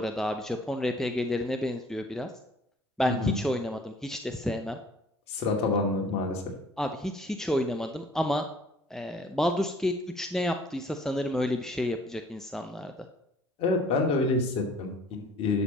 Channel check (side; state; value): both; normal; correlation 0.54